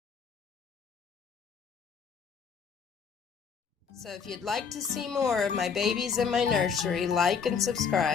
So if you'd like to see more of my babies in my nursery, like and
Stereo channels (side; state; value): right; quieter; 6.3 dB